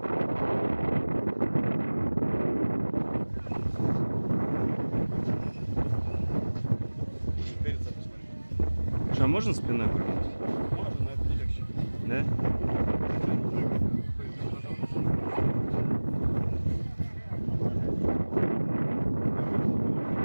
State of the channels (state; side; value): inverted; both; correlation -1.00